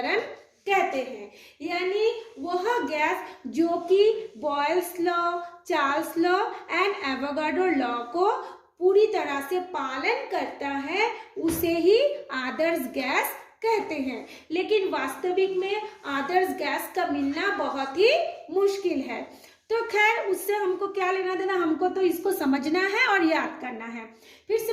कहते हैं। यानी वह गैस जो कि Boyle's law, Charles law and Avogadro law को पूरी तरह से पालन करता है, उसे ही आदर्श गैस कहते हैं। लेकिन वास्तविक में आदर्श गैस का मिलना बहुत ही मुश्किल है। तो खैर, उससे हमको क्या लेना देना, हमको तो इसको समझना है और याद करना है। फिर से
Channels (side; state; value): both; identical; correlation 1.00